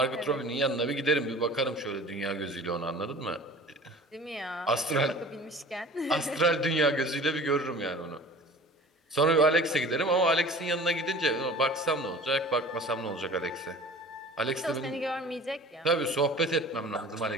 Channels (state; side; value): normal; both; correlation 0.43